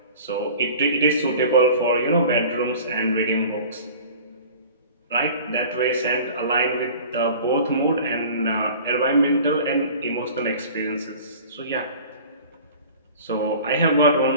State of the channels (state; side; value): inverted; both; correlation -0.43